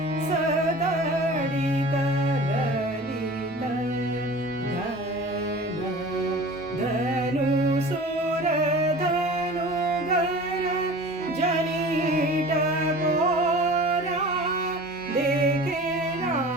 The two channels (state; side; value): normal; both; correlation 0.40